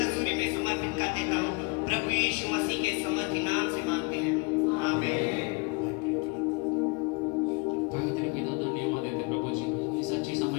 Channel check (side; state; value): right; quieter; 29.4 dB